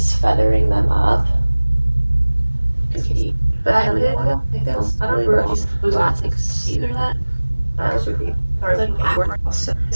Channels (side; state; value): both; inverted; correlation -1.00